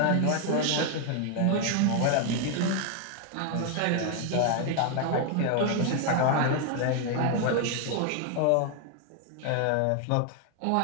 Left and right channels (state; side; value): different; both; correlation 0.00